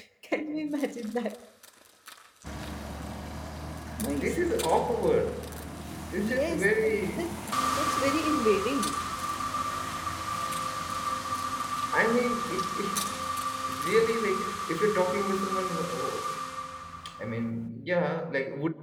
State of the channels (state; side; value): identical; both; correlation 1.00